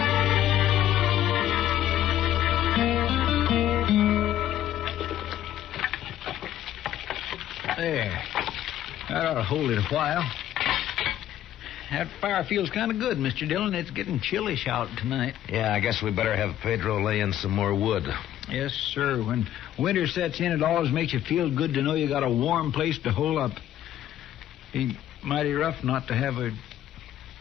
There. That ought to hold it a while. That fire feels kind of good, Mr. Dillon. It's getting chillish out tonight. Yeah, I guess we better have Pedro lay in some more wood. Yes, sir. When winter sets in, it always makes you feel good to know you got a warm place to hole up. Be mighty rough not to have a...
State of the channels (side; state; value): right; quieter; 12.1 dB